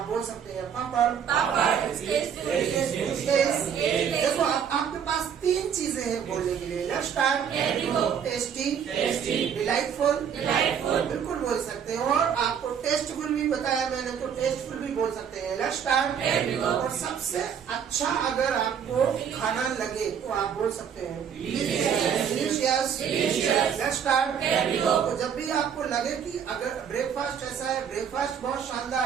बोल सकते हैं पापड़। देखो आपके पास तीन चीजें हैं बोलने के लिए। Let's start. टेस्टी, डिलाइटफुल, बिल्कुल बोल सकते हैं। और आपको टेस्टफुल भी बताया मैंने, तो टेस्टफुल भी बोल सकते हैं। Let's start. और सबसे अच्छा अगर आपको खाना लगे तो आप बोल सकते हैं डिलीशियस। Let's start. तो जब भी आपको लगे कि अगर ब्रेकफास्ट ऐसा है, ब्रेकफास्ट बहुत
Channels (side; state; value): left; quieter; 7.9 dB